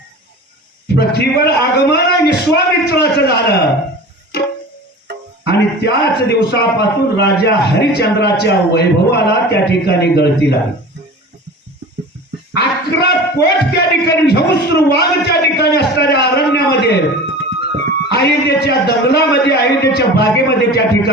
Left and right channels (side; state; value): both; normal; correlation 0.36